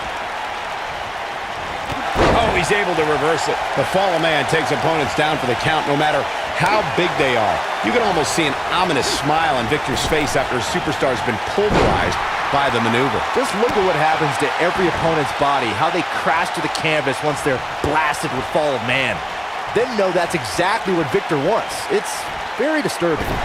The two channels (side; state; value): both; identical; correlation 1.00